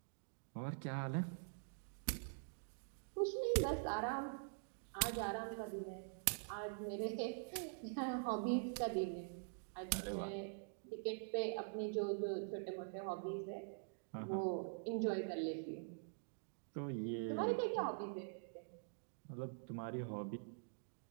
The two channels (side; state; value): left; silent; digital silence